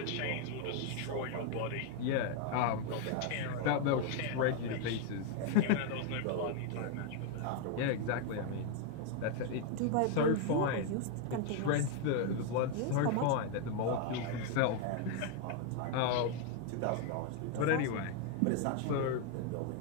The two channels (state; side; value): different; both; correlation 0.01